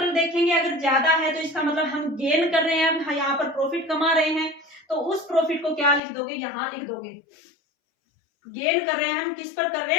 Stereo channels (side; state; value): right; drops out; at 6.0 s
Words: देखेंगे, अगर ज्यादा है तो इसका मतलब हम गेन कर रहे हैं, हम यहाँ पर प्रॉफिट कमा रहे हैं, तो उस प्रॉफिट को क्या लिख दोगे, यहाँ लिख दोगे। गेन कर रहे हैं हम, किस पर कर रहे